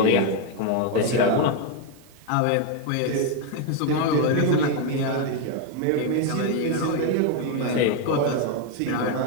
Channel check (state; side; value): different; both; correlation 0.01